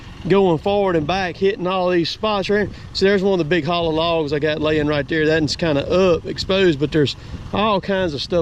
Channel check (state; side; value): identical; both; correlation 1.00